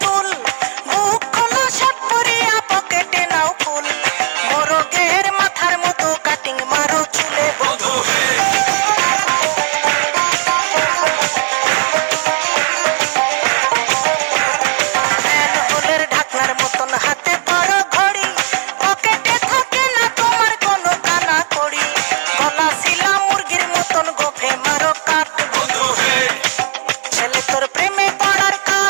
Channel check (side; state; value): left; quieter; 35.5 dB